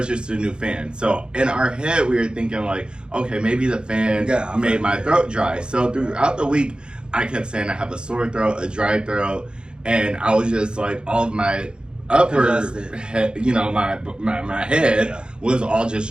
a new fan. So, in our head, we were thinking like, okay, maybe the fan made my throat dry. So, throughout the week, I kept saying I have a sore throat, a dry throat, and I was just like, all of my upper head, you know, my head was all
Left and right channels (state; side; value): late; left; 0.050 ms